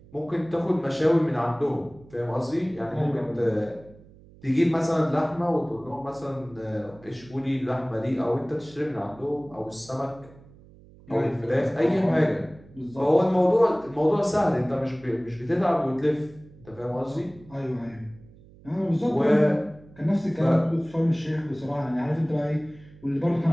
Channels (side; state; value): right; noise; hum, 23 dB below the sound